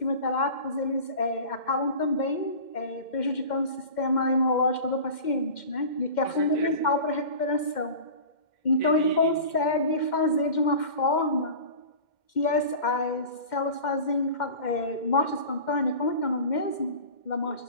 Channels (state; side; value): late; right; 2.1 ms